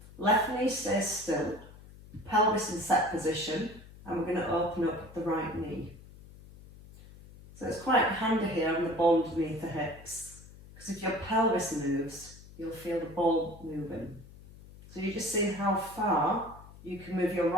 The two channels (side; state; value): left; noise; hum, 19 dB below the sound